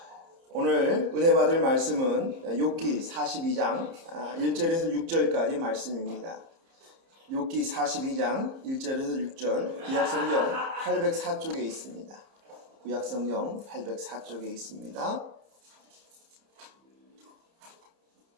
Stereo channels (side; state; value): left; late; 30 ms